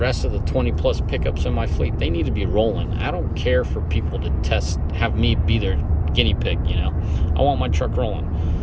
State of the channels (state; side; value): identical; both; correlation 1.00